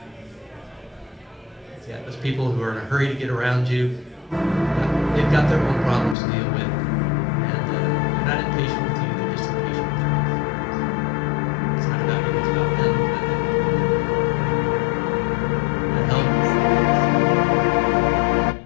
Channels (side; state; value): right; drops out; at 6.2 s